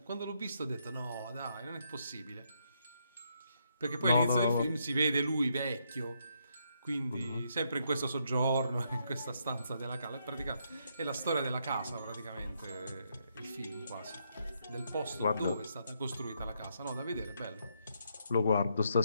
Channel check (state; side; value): inverted; both; correlation -0.76